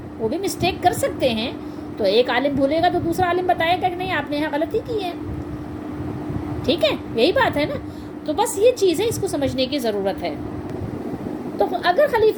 وہ بھی مسٹیک کر سکتے ہیں، تو ایک عالم بھولے گا تو دوسرا عالم بتائے گا کہ نہیں آپ نے یہاں غلطی کی ہے، ٹھیک ہے؟ یہی بات ہے نا۔ تو بس یہ چیز ہے، اس کو سمجھنے کی ضرورت ہے۔ تو اگر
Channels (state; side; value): identical; both; correlation 1.00